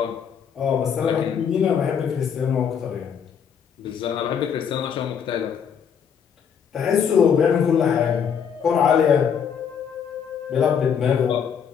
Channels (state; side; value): quieter; right; 7.5 dB